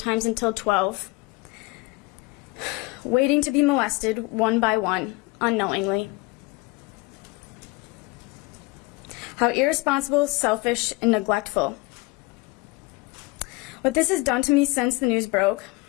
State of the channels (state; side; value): quieter; right; 23.8 dB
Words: until 12, waiting to be molested one by one, unknowingly. How irresponsible, selfish, and neglectful. What this has done to me since the news broke.